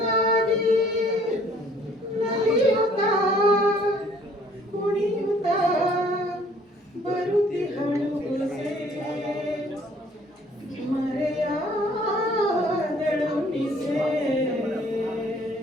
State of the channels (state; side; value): normal; both; correlation 0.59